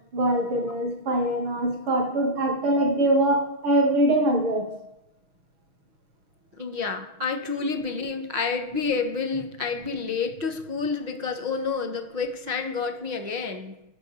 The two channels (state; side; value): late; left; 6.3 ms